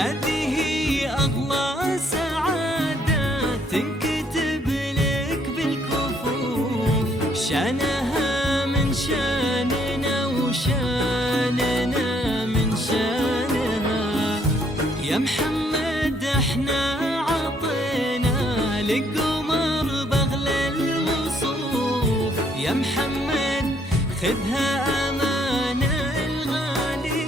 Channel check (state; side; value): normal; both; correlation 0.67